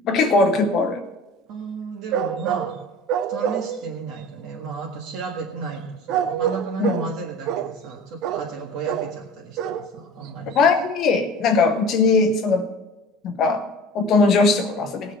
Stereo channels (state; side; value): normal; both; correlation 0.40